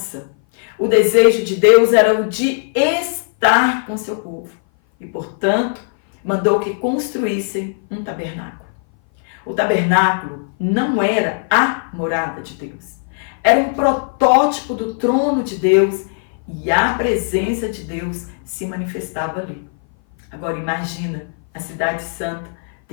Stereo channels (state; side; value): silent; right; 58 dB below the other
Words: o desejo de Deus era o de estar com seu povo. E, portanto, mandou que construíssem um tabernáculo. O tabernáculo não era a morada de Deus. Era um protótipo do trono de Deus e a presença de Deus se manifestava ali. Agora imagina a cidade santa,